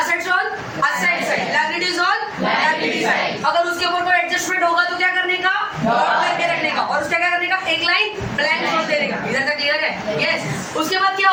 on asset side, liabilities on liability side। अगर उसके ऊपर कोई एडजस्टमेंट होगा तो क्या करने का? नोट करके रखने का, और उसका क्या करने का? एक लाइन ब्लैंक छोड़ देने का। इधर तक क्लियर है? यस। उसके बाद क्या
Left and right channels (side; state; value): both; identical; correlation 1.00